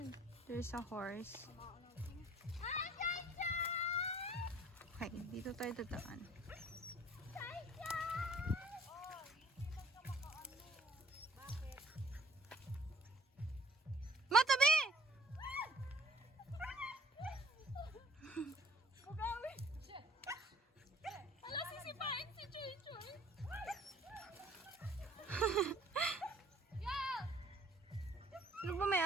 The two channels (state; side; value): normal; both; correlation 0.55